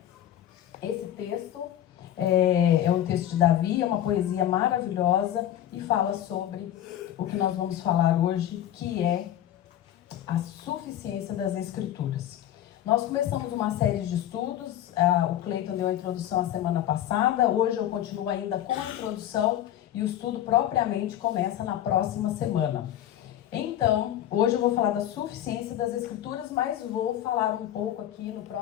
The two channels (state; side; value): quieter; right; 11.7 dB